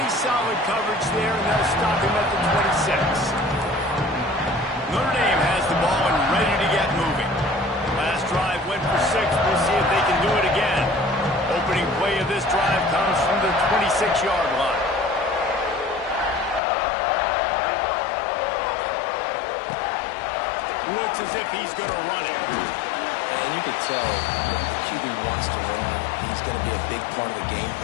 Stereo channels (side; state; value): right; drops out; at 16.6 s